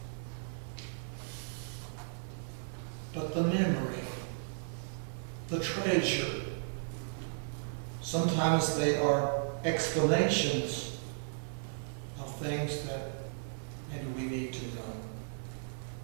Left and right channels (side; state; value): left; silent; 54 dB below the other